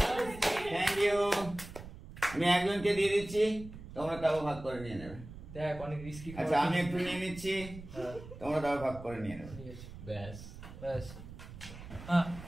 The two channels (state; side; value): noise; right; rumble, 14 dB below the sound